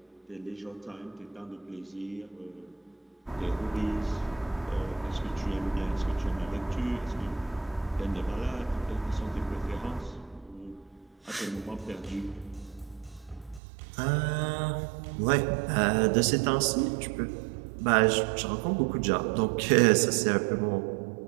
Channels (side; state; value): left; drops out; at 13.6 s